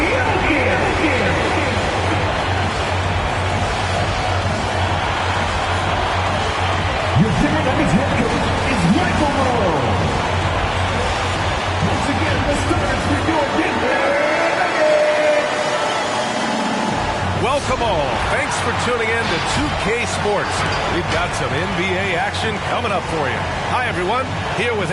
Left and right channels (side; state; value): both; identical; correlation 1.00